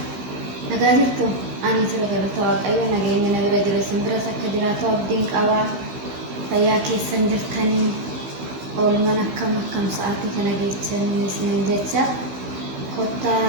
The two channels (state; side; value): late; left; 16 ms